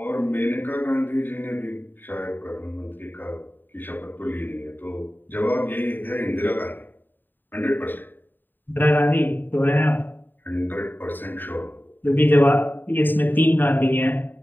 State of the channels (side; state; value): right; late; 0.092 ms